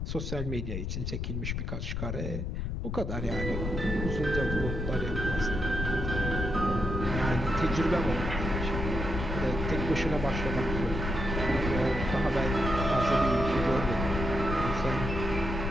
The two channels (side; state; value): left; noise; rumble, 3 dB below the sound